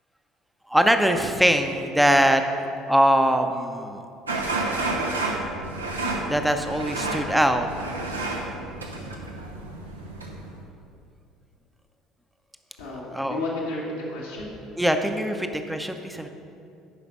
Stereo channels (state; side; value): normal; both; correlation 0.78